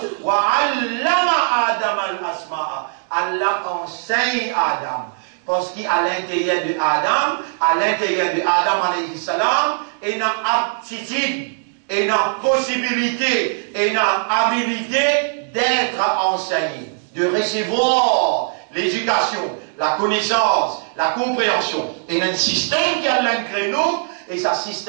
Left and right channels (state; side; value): silent; left; digital silence